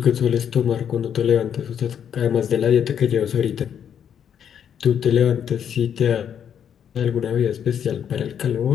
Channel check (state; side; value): quieter; right; 8.6 dB